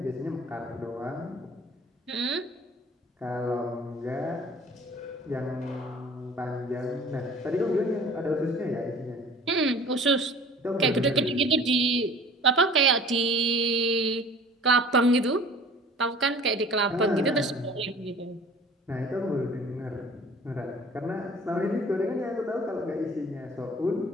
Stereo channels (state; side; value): normal; both; correlation 0.47